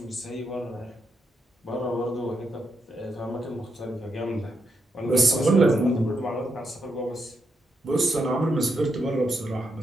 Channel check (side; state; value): both; normal; correlation 0.81